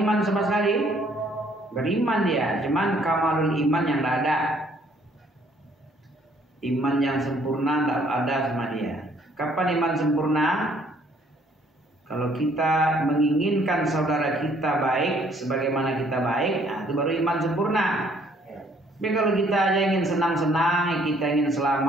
sama sekali? Beriman dia, cuman kamalul iman yang tidak ada. Iman yang sempurna tidak ada sama dia. Kapan iman sempurna? Kalau kita menginginkan saudara kita baik sebagaimana kita baik, nah itu baru iman sempurna. Tapi kalau kita aja ingin senang-senang, kita ingin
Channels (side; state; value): both; normal; correlation 0.63